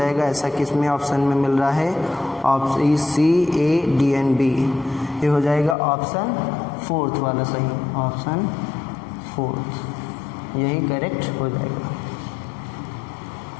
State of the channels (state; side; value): drops out; right; at 5.8 s